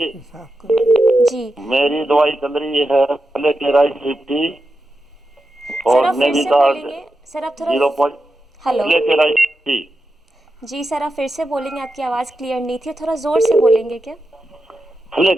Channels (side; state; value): both; normal; correlation 0.89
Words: साफ करो। जी मेरी दवाई चल रही है फ्लेकेराइड 50 सर, और आप फिर से नेविकार्ड बोलेंगे सर, आप थोड़ा 0. हेलो फ्लेकेराइड 50 जी सर, आप फिर से बोलेंगे, आपकी आवाज़ क्लियर नहीं थी, थोड़ा ज़ोर से बोलेंगे क्या?